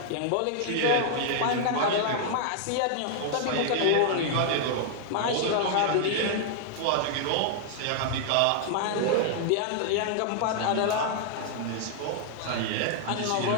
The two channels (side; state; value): both; different; correlation -0.01